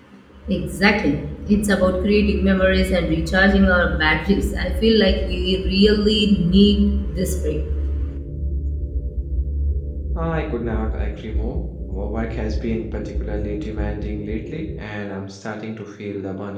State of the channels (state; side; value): identical; both; correlation 1.00